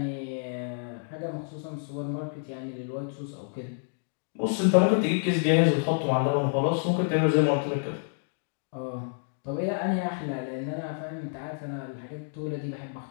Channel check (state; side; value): silent; right; digital silence